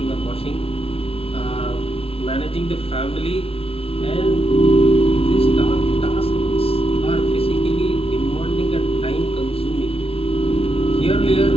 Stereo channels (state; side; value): late; right; 0.27 ms